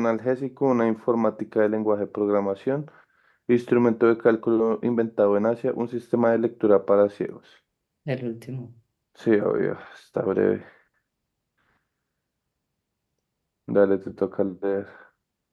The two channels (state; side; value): identical; both; correlation 1.00